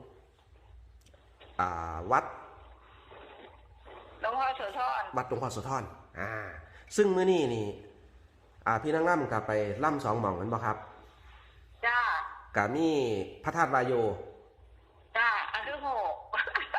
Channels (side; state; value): both; identical; correlation 1.00